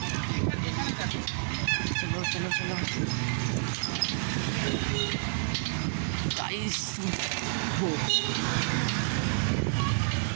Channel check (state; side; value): silent; left; 58 dB below the other